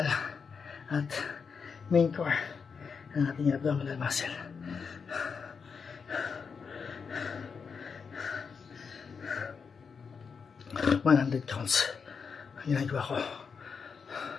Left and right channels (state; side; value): quieter; right; 5.7 dB